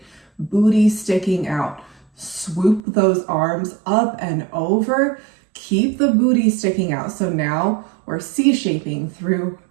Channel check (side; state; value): left; drops out; at 2.8 s